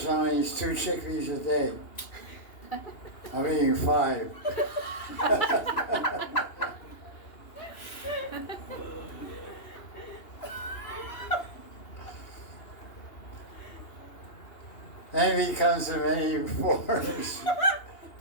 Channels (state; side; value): late; right; 2.8 ms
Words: only eats 2 chickpeas a day. I'm eating 5. Envy comes in many forms.